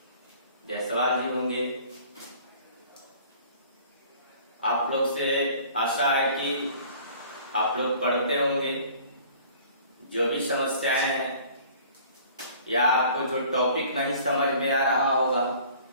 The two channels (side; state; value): both; inverted; correlation -0.50